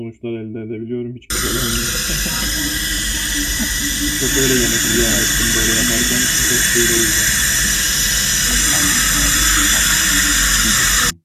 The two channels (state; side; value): identical; both; correlation 1.00